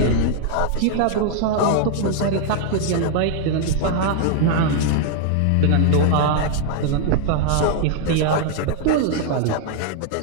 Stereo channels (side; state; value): both; different; correlation 0.00